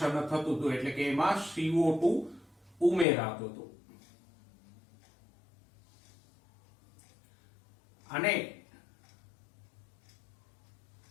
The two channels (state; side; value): drops out; right; at 3.1 s